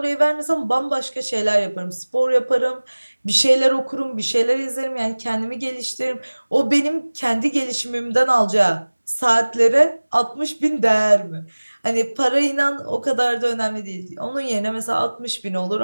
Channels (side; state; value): both; inverted; correlation -1.00